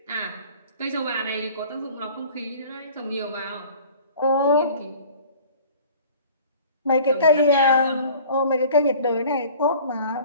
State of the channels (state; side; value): inverted; both; correlation -0.47